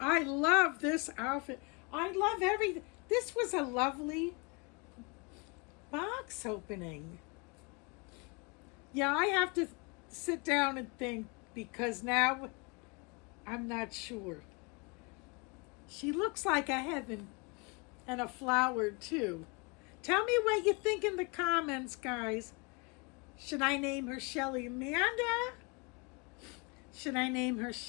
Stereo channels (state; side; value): quieter; right; 31.0 dB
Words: this outfit. I love everything. This was a lovely box opening. Yeah, I have to sit down and think because now I'm not sure. She looks like a heaven and a flower too. Tell me what you think in the comments, guys. Should I name her Shelly Amanda? Should I name her